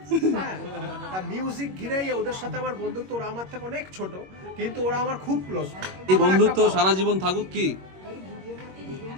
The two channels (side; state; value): left; late; 21 ms